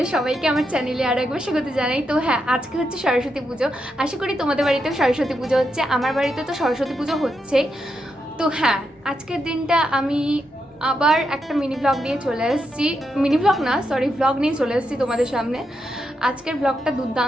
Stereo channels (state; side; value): normal; both; correlation 0.83